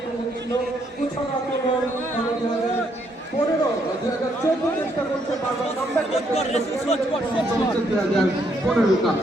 ছিল কুছন আক্রমণ 2014 চেষ্টা করছে বারবার কামব্যাক করতে 2015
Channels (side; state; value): both; normal; correlation 0.73